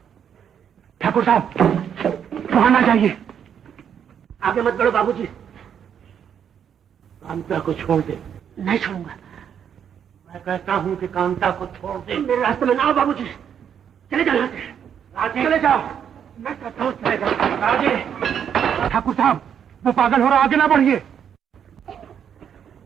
ठाकुर साहब, वहां ना जाइए। आगे मत बढ़ो बाबूजी। कांता को छोड़ दे। नहीं छोड़ूंगा। मैं कहता हूं कि कांता को छोड़ दे। मेरे रास्ते में ना आओ बाबूजी। चले जाओ यहाँ से। राजे, चले जाओ। मैं कहता हूं चले जाओ। राजे। ठाकुर साहब, वो पागल हो रहा, आगे ना बढ़िए।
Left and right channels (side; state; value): left; quieter; 8.4 dB